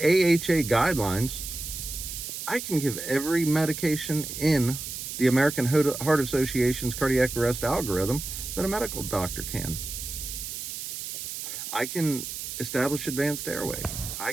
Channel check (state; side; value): noise; right; hiss, 7 dB below the sound